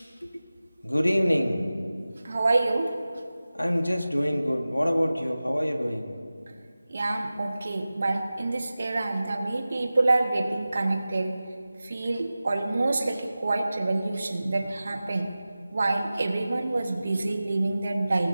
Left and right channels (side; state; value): both; inverted; correlation -0.96